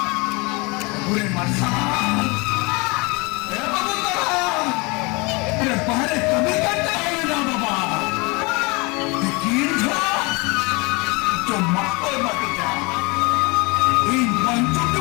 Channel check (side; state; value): right; quieter; 27.3 dB